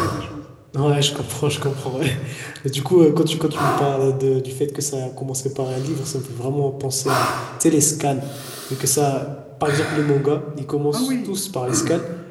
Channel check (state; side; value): identical; both; correlation 1.00